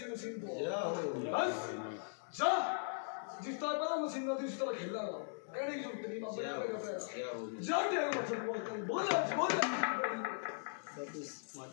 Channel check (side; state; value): right; silent; digital silence